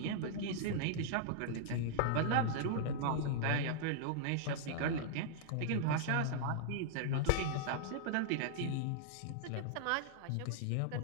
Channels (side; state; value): both; different; correlation -0.01